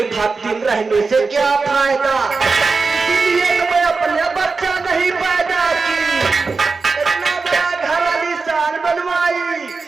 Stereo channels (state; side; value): quieter; left; 4.3 dB